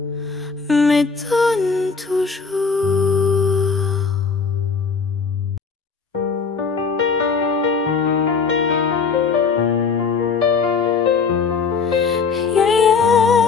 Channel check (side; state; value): right; quieter; 5.3 dB